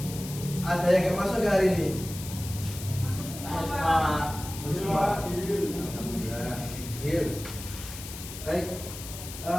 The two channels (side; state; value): left; noise; hiss, 11 dB below the sound